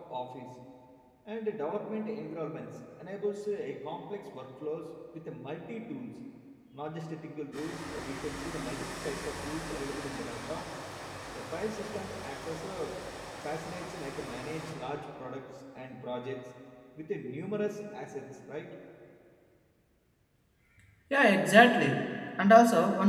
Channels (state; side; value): identical; both; correlation 1.00